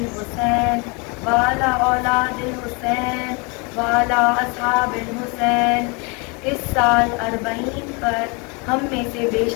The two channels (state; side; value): quieter; right; 30.8 dB